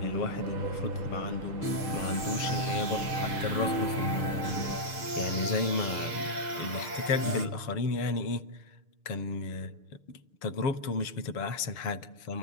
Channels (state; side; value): late; right; 6.7 ms